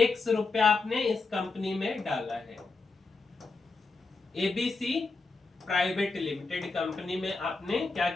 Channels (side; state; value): right; quieter; 3.9 dB